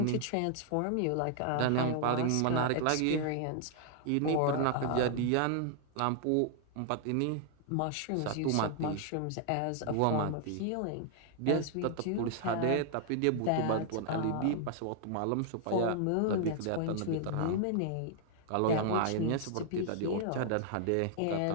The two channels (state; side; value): different; both; correlation 0.00